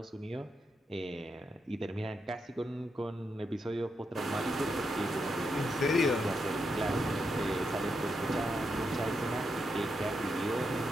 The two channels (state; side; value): normal; both; correlation 0.83